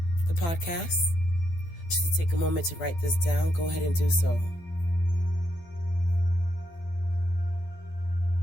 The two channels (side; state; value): right; late; 12 ms